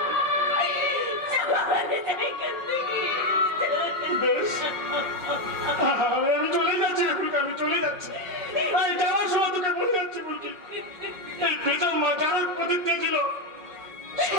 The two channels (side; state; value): left; late; 5.5 ms